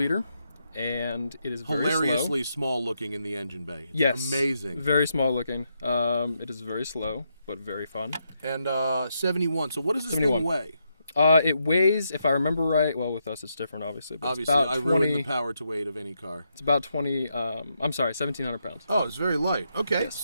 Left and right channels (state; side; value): inverted; both; correlation -0.81